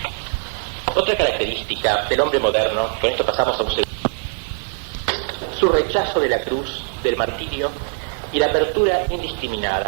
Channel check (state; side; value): silent; left; digital silence